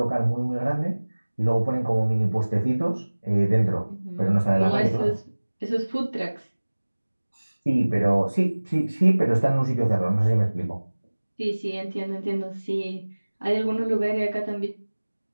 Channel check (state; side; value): inverted; both; correlation -1.00